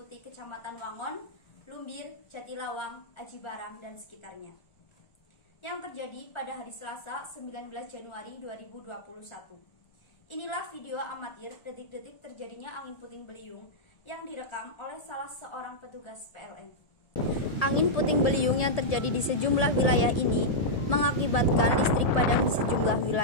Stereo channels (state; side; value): late; right; 1.7 ms